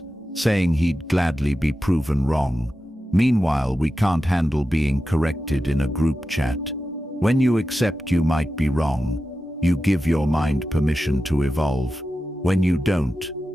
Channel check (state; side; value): normal; both; correlation 0.92